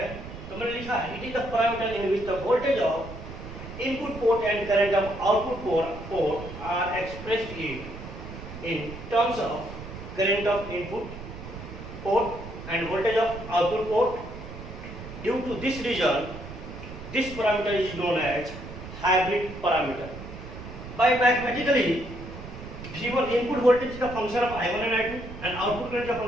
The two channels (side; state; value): right; noise; rumble, 12 dB below the sound